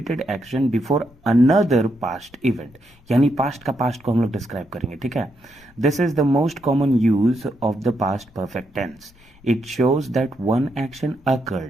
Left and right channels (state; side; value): noise; left; rumble, 27 dB below the sound